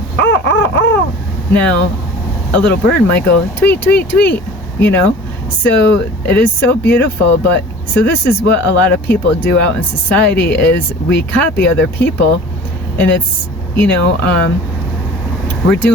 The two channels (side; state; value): both; normal; correlation 0.43